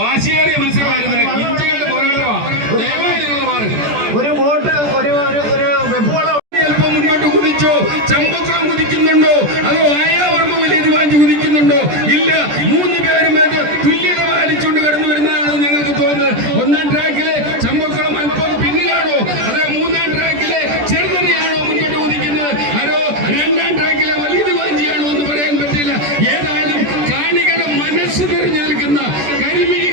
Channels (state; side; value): late; left; 14 ms